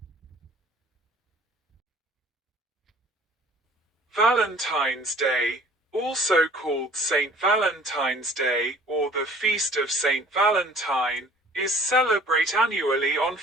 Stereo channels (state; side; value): normal; both; correlation 0.51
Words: Valentine's Day, also called St. Valentine's Day or the Feast of St. Valentine, is celebrated annually on